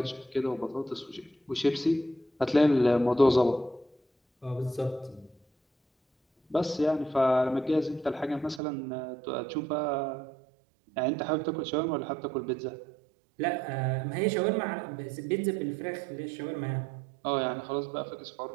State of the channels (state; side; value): drops out; left; at 8.6 s